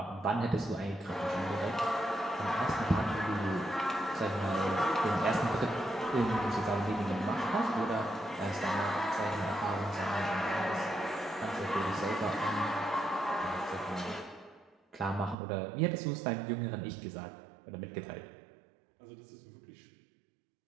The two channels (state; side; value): drops out; left; at 15.4 s